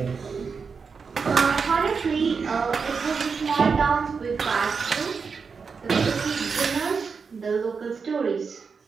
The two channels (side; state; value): left; quieter; 5.4 dB